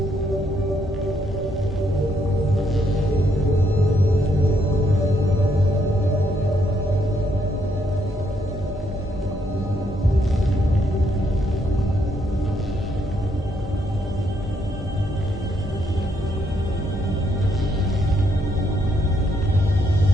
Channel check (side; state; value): both; normal; correlation 0.74